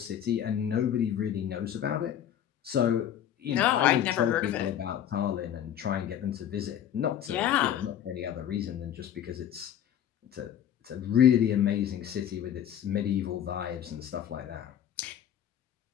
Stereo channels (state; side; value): quieter; right; 10.2 dB